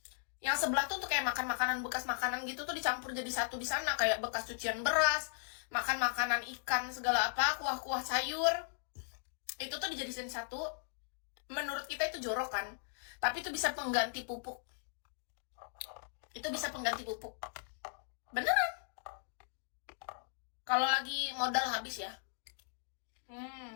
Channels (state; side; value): silent; right; digital silence